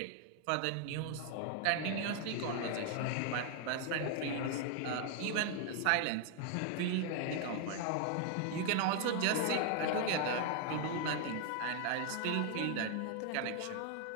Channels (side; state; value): both; different; correlation 0.00